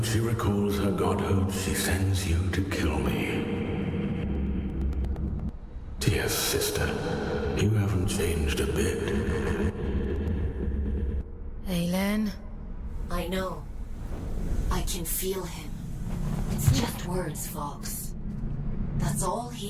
she recalls her godhood, she sends you to kill me. Dear sister, you haven't changed a bit. Aelin? I know. I can feel him. It's just words, Fox. That's all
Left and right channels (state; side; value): identical; both; correlation 1.00